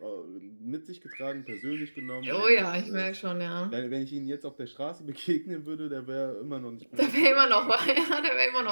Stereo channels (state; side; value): inverted; both; correlation -1.00